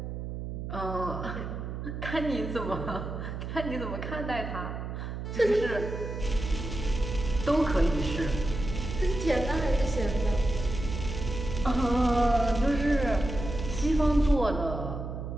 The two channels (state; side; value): noise; right; hum, 6 dB below the sound